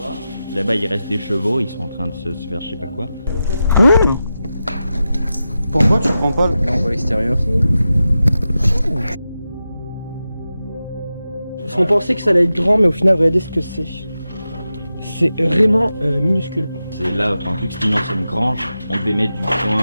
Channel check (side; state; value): both; inverted; correlation -0.91